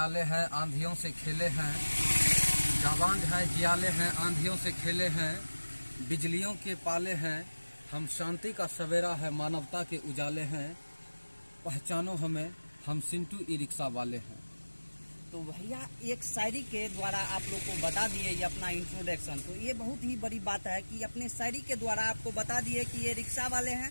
हैं आंधियों से खेले हैं, जाबाज है जियाले हैं आंधियों से खेले हैं, बिजलियों के पाले हैं, हम शांति का सवेरा है मानवता के उजाले हैं, पहचानो हमें हम सिंटू ई रिक्शा वाले हैं। तो भैया एक शायरी के द्वारा आप लोग को बता दिए ये अपना इंट्रोडक्शन, तो ये बहुत ही बड़ी बात है कि अपने शायरी के द्वारा आपको बता दिए कि ये रिक्शा वाले हैं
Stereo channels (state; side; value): inverted; both; correlation -1.00